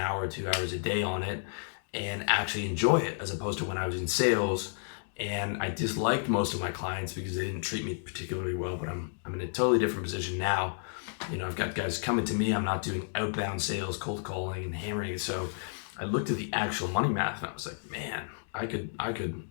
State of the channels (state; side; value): silent; right; digital silence